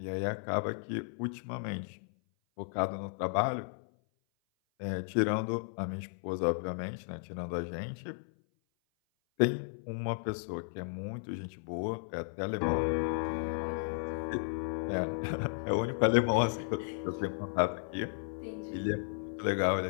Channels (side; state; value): right; silent; 55 dB below the other